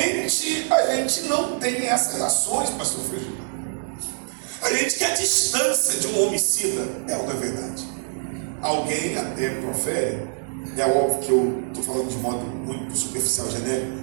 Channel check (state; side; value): silent; left; 62 dB below the other